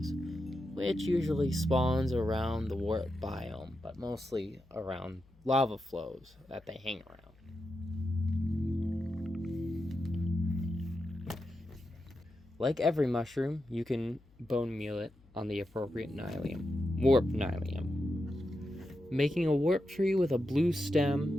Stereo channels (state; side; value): noise; left; hum, 28 dB below the sound